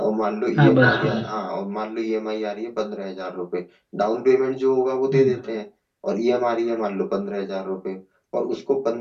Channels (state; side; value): identical; both; correlation 1.00